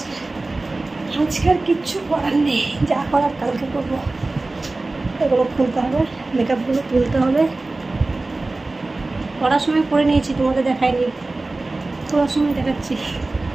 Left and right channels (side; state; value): left; quieter; 3.2 dB